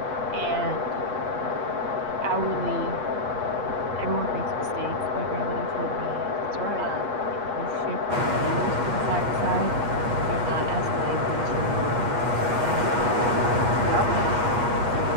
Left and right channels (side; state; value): left; late; 8.4 ms